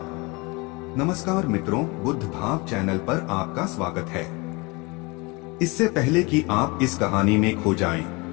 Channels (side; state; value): right; quieter; 26.8 dB